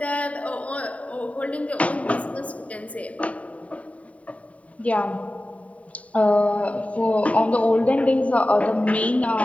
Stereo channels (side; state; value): right; late; 0.067 ms